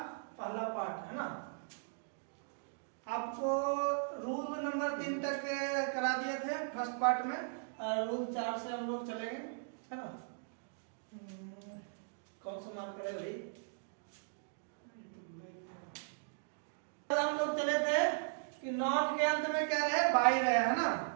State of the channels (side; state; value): left; silent; digital silence